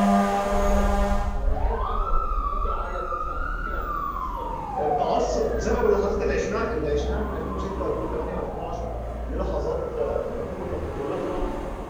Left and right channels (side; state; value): both; identical; correlation 1.00